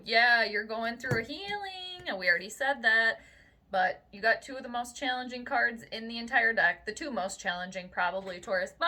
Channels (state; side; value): identical; both; correlation 1.00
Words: yeah, you're going through a healing. And we already said that. But you got 2 of the most challenging cards in the entire deck. The 2 most challenging, probably, Taurus.